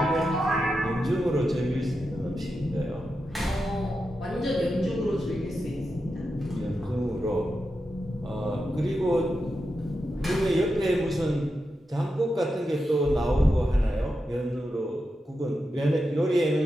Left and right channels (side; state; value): both; normal; correlation 0.88